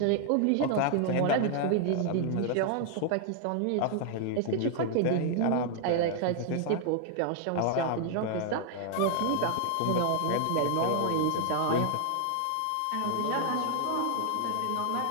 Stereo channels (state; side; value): different; both; correlation 0.00